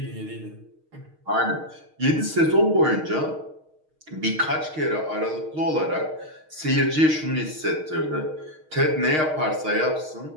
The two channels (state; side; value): late; left; 6.4 ms